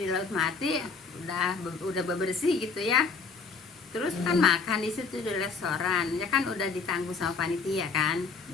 di Laut Mati udah bebersih gitu ya, terus kan makan di situ di restoran ya kan udah ditanggung sama panitia kan.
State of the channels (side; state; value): right; quieter; 4.8 dB